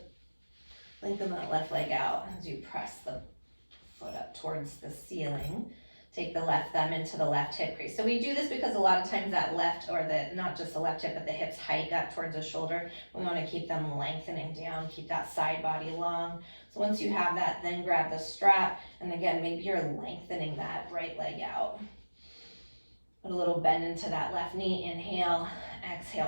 Lengthen that left leg out as you press the foot up towards the ceiling. Take the left thumb into the left hip crease. So we do this because a lot of times that left, or not just the left hip, but the hips hike up towards the shoulder. We want to keep them lengthening down, keep that side body long. So once you have that, then grab the strap. And again, maybe you're lengthening that right leg out. Put a little bend into that left knee. Inhale,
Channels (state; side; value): inverted; both; correlation -1.00